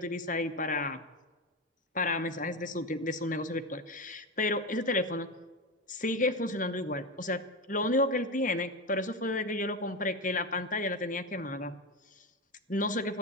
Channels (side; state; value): both; normal; correlation 0.17